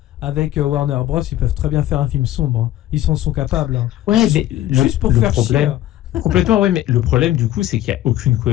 avec Warner Bros, ils peuvent très bien faire un film sombre. Hein. Ils en sont capables. Hein. Ouais, mais juste pour faire chier. Complètement, mais le problème du coup c'est qu'il n'y a aucune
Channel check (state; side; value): quieter; right; 13.6 dB